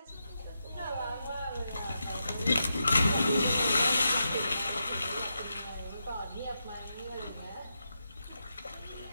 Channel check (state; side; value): inverted; both; correlation -0.86